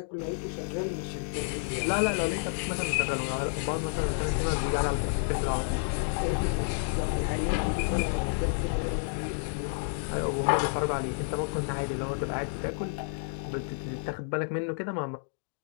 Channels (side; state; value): right; silent; digital silence